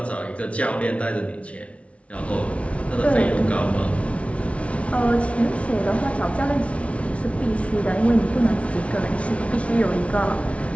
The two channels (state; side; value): late; right; 0.063 ms